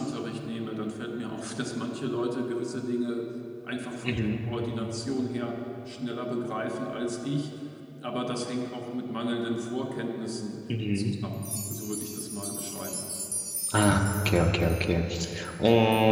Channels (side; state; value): both; identical; correlation 1.00